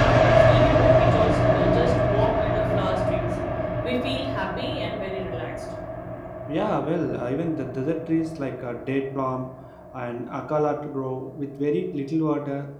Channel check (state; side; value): identical; both; correlation 1.00